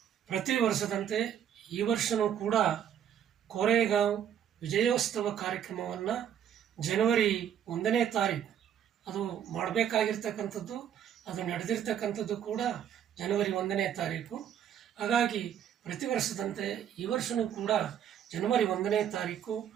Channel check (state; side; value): quieter; left; 9.4 dB